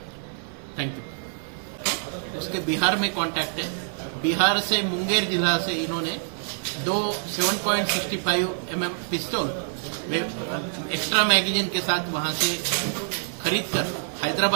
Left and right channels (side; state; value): left; silent; 55 dB below the other